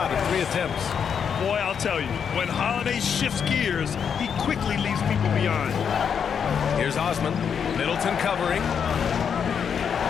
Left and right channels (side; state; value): right; quieter; 7.3 dB